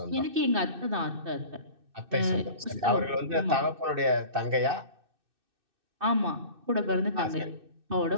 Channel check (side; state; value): left; late; 2.6 ms